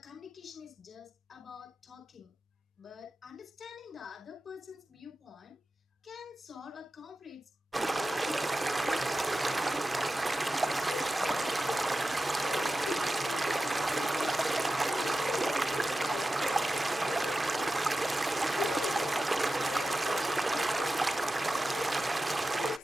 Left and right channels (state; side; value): normal; both; correlation 0.93